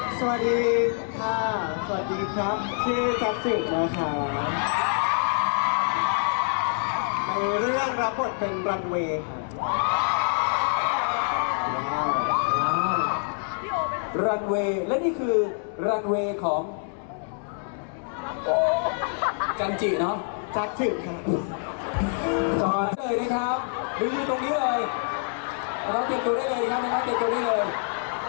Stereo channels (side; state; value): right; silent; 60 dB below the other